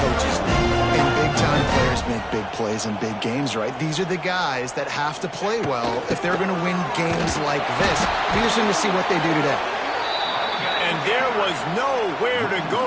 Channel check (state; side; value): identical; both; correlation 1.00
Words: coaches need. And big-time players make big plays in big games, right? These are the guys that have to play well if they're going to win games like this. Be interesting to see what they do today. And there was nowhere to go,